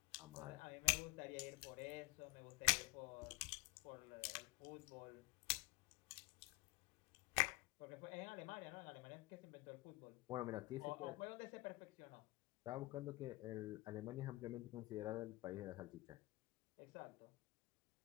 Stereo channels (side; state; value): right; quieter; 21.4 dB